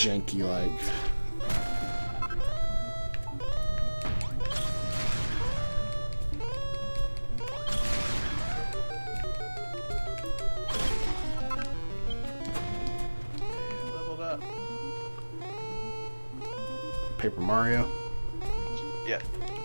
Leveled up. Paper Mario. Yeah.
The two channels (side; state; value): both; inverted; correlation -1.00